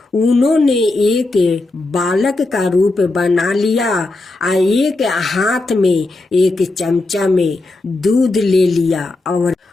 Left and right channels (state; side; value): quieter; right; 3.0 dB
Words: उन्होंने एक बालक का रूप बना लिया और एक हाथ में एक चमचा में दूध ले लिया और